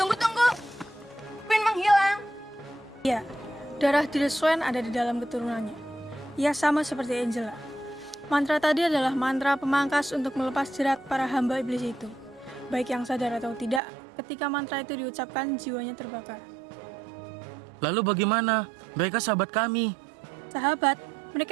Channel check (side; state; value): left; drops out; at 13.8 s